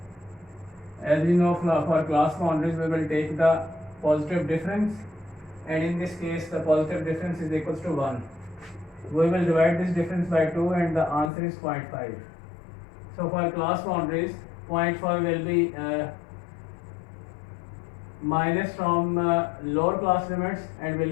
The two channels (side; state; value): right; drops out; at 11.3 s